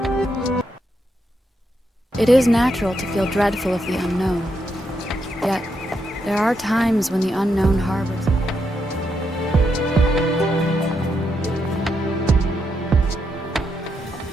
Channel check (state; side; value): normal; both; correlation 0.81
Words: It is natural to feel dreadful of the unknown. Yet, there are times when the unknown harbors.